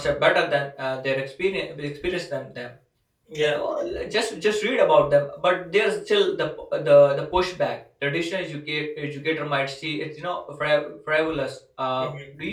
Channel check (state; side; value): identical; both; correlation 1.00